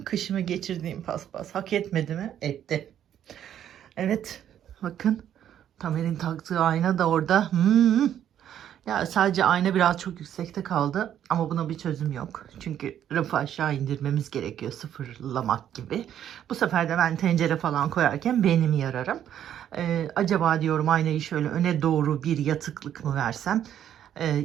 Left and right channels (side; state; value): left; quieter; 10.3 dB